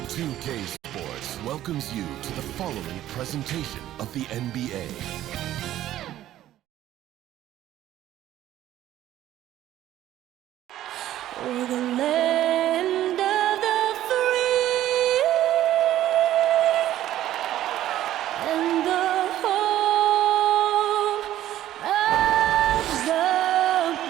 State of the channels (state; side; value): quieter; left; 13.1 dB